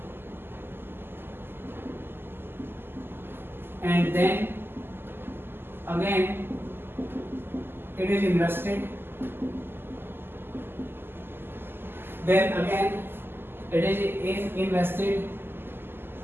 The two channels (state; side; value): late; left; 0.10 ms